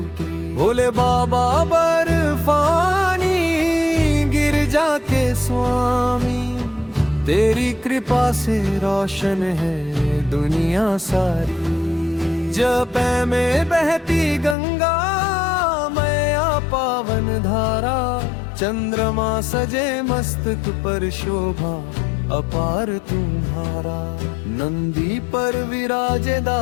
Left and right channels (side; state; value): right; drops out; at 14.6 s